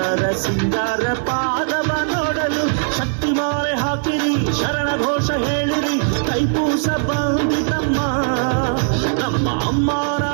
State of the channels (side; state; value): left; silent; digital silence